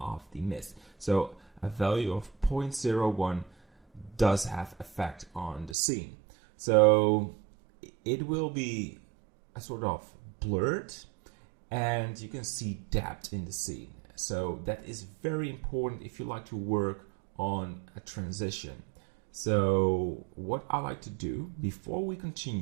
of the mist. So a value of 0.01 does have effect on the scene. So it will be a sort of blurred, and you can see depth in the scene. So that is very important if you like to work on a transition. So what I like to do before we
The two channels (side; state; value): left; drops out; at 5.8 s